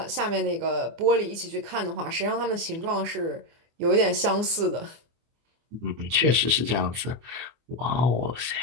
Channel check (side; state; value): left; late; 24 ms